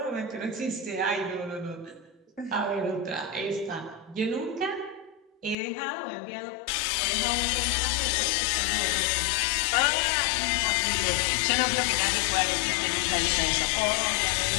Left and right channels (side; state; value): right; drops out; at 5.6 s